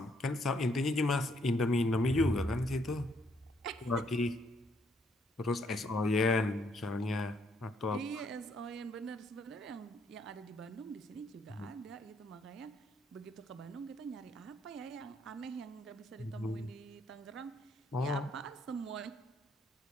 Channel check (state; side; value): normal; both; correlation 0.70